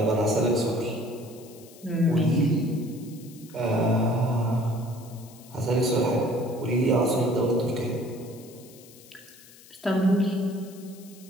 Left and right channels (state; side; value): noise; left; hiss, 22 dB below the sound